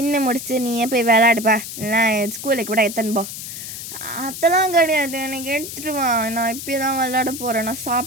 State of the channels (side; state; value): left; noise; hiss, 9 dB below the sound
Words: முடிச்சு நீயே போய் விளையாடுப்பா, இல்லைனா ஸ்கூலுக்கு கூட எத்தனை போ. அதெல்லாம் கிடையாது. எனக்கு எடுத்துட்டு வா. நான் இப்பயே தான் விளையாட போகிறேன். நான்